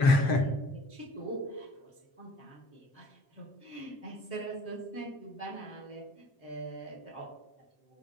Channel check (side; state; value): right; late; 7.5 ms